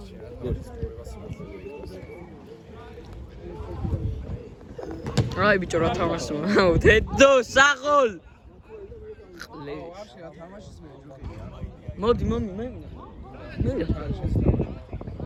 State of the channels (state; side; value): identical; both; correlation 1.00